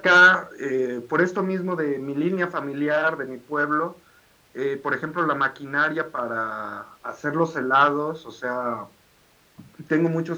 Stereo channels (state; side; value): identical; both; correlation 1.00